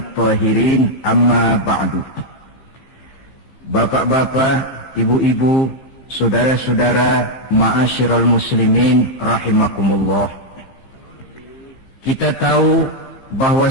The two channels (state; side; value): late; right; 15 ms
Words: amma ba'du. Bapak-bapak, ibu-ibu, saudara-saudara, ma'asyiral muslimin rahimakumullah. Kita tahu bahwa